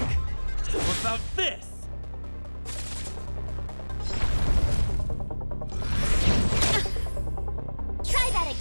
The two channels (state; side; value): inverted; both; correlation -1.00